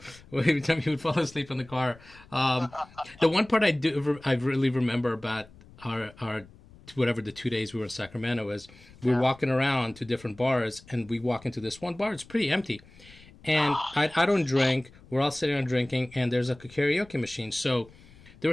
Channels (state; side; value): noise; left; rumble, 23 dB below the sound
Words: every time he would fall asleep in the car. The one part I really remember about our whatever the 2 days we were in Sacramento is we were walking around to different bars, and we walk into this one bar. It's pretty empty, and I don't drink. We're all sitting around drinking, and there's like a karaoke machine. So there